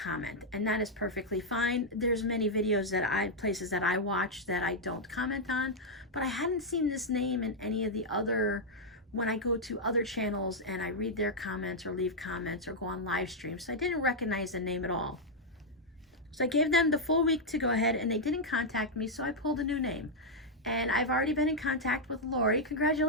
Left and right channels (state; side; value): normal; both; correlation -0.03